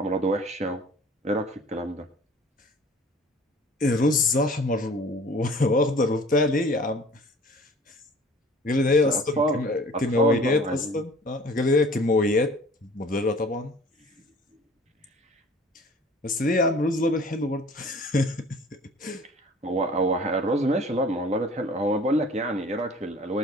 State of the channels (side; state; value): both; normal; correlation 0.48